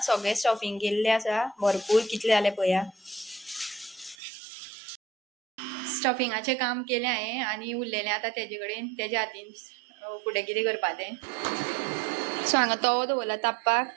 सगळें स्टफिंग केल्लें आसा. भरपूर कितले जाले पळोवया. स्टफिंगाचें काम केलें हांवें आनी उरलेलें आतां तेजे कडेन. तेज्या हातीन फुडें कितें करपा तें. सो हांगा तवो दवरला तापपाक.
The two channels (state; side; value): drops out; left; at 4.2 s